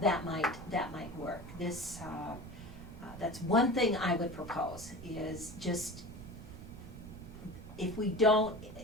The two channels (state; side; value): noise; right; rumble, 12 dB below the sound